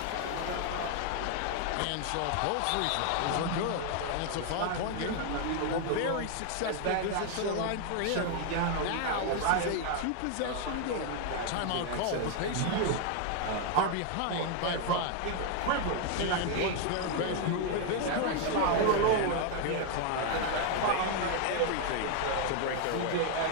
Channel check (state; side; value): different; both; correlation 0.00